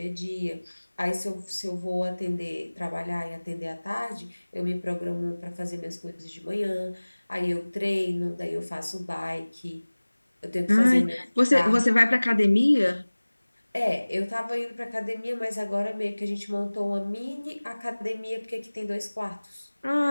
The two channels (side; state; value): both; inverted; correlation -1.00